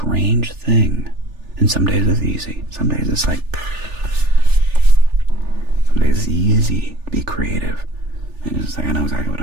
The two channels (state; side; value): late; left; 3.4 ms